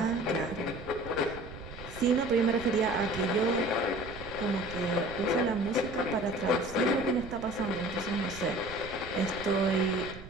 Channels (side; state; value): right; noise; rumble, 14 dB below the sound